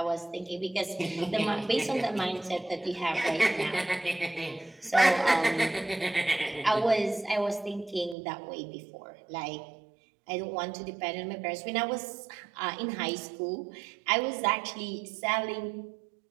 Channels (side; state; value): left; drops out; at 8.2 s